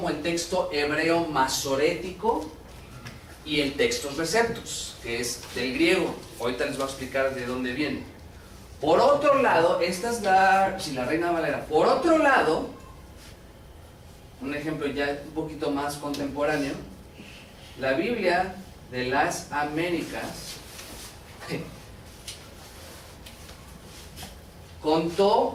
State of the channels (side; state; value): both; identical; correlation 1.00